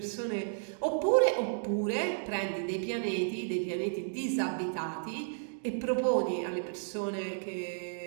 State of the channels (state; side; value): silent; left; digital silence